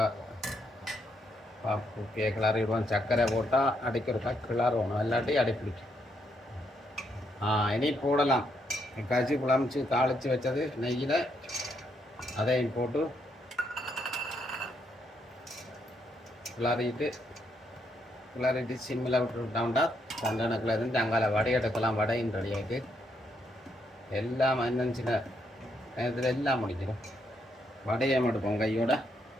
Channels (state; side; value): normal; both; correlation 0.76